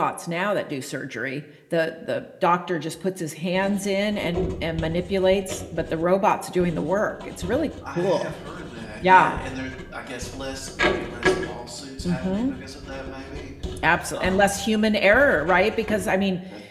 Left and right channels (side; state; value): both; identical; correlation 1.00